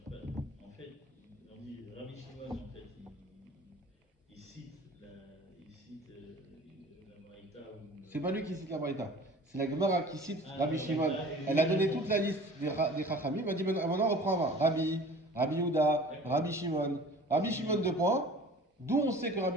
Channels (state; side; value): normal; both; correlation 0.44